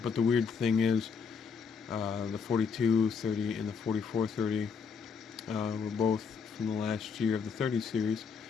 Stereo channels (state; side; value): quieter; right; 5.9 dB